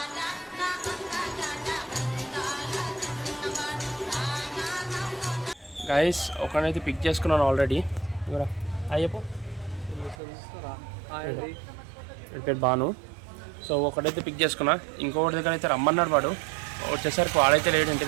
గైస్ ఒకనైతే పిక్ చేసుకున్నాను ఆల్రెడీ. అయ్యప్పో పేరు బాను. సో ఒకటైతే పిక్ చేసుకున్నా, ఇంకొకటి దగ్గర అయితే రమ్మన్నాడు. వాడు వచ్చేసరికి వాడైతే లేడు ఇంటి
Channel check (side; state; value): left; drops out; at 10.2 s